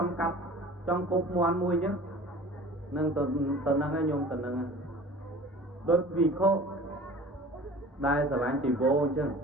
ង់កាប់ចង់គប់មាន់មួយអញ្ចឹងនឹងទៅហ្នឹងហើយញោមទៅហ្នឹងហើយដូចវិខោដែលស្រឡាញ់ជីវោអញ្ចឹង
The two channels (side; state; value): both; normal; correlation 0.43